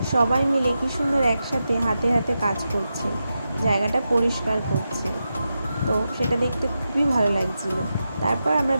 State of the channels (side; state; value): both; inverted; correlation -0.89